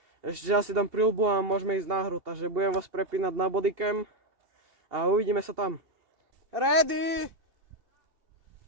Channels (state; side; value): late; left; 2.8 ms